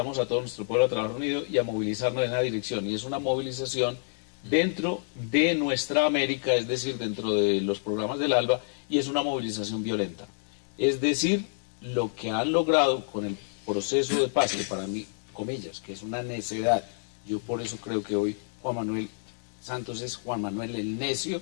a todo nuestro pueblo a trabajar unido y a movilizarnos en esa dirección. Y es una movilización dentro de nuestra América, es decir, dentro de los programas del ALBA, y es una movilización violenta. Es decir, lo que han logrado con el proceso de paz, que para mí, comillas, que es una necedad, yo por eso creo que hoy Juan Manuel Santos es Juan Manuel el necio,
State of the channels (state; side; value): silent; right; digital silence